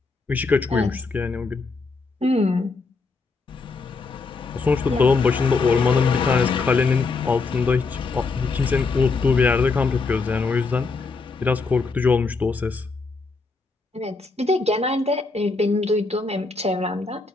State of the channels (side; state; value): right; quieter; 4.1 dB